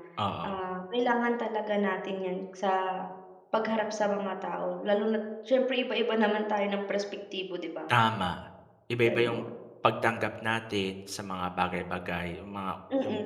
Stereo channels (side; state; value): both; identical; correlation 1.00